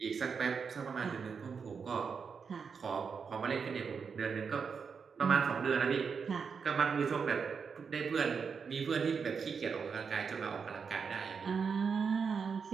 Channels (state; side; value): quieter; left; 5.9 dB